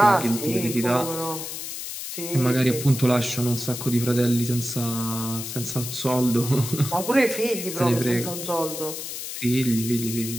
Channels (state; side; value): noise; left; hiss, 7 dB below the sound